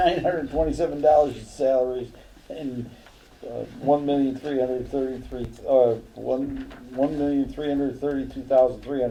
in salaries and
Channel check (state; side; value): identical; both; correlation 1.00